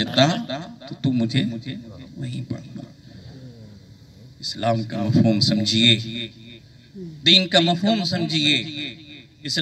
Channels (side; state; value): both; identical; correlation 1.00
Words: تو مجھے وہیں پاتا. اسلام کا مفہوم سمجھیے، دین کا مفہوم سمجھیے،